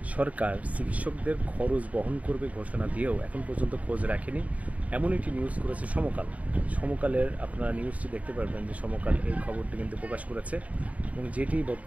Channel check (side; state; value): left; late; 0.069 ms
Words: সরকার চিকিৎসকদের খরচ বহন করবে ঘোষণা দিয়েও এখন পর্যন্ত খোঁজ রাখেনি, এমন একটি নিউজ করেছে সমকাল। সমকালের আপনারা নিউজটি দেখতে পারবেন যে সমকাল এই খবরটি কিন্তু প্রকাশ করেছে এবং যেটি